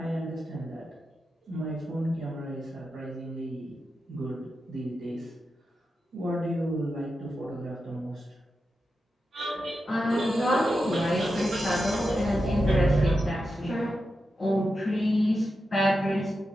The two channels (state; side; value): normal; both; correlation 0.89